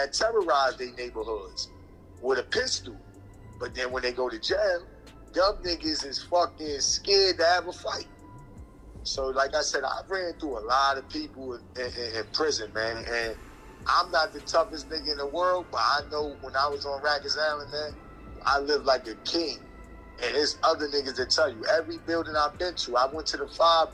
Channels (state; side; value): identical; both; correlation 1.00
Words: terrorize their neighborhoods with a pistol. But then when they go to jail, them niggas is fucking scared to have a fight. So like I said, I've ran through a lot of people in prison, man. And I'm not the toughest nigga in the world, but I know when I was on Rikers Island, man, I lived like a king. And there's other niggas that tell you, every building I've been to, I went to the